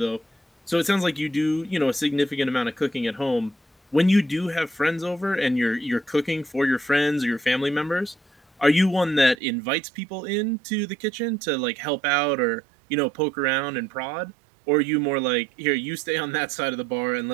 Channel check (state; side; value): drops out; left; at 9.3 s